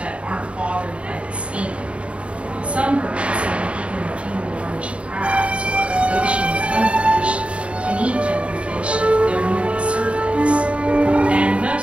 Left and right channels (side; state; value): left; late; 0.061 ms